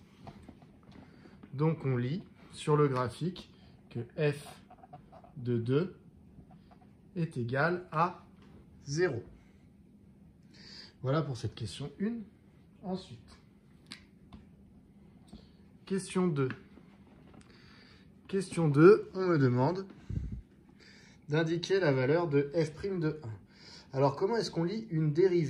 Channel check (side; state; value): both; identical; correlation 1.00